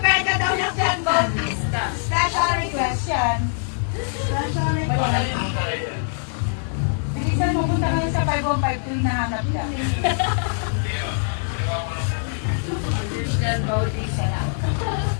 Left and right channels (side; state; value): right; silent; 59 dB below the other